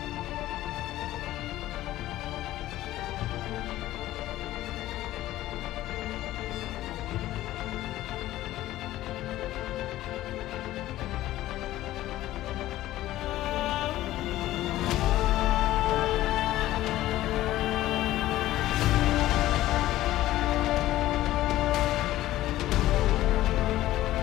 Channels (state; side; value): quieter; right; 15.1 dB